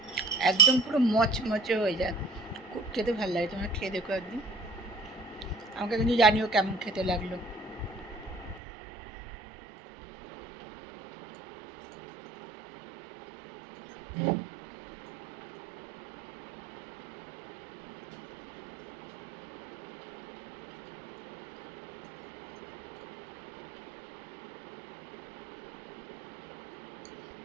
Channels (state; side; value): drops out; left; at 8.6 s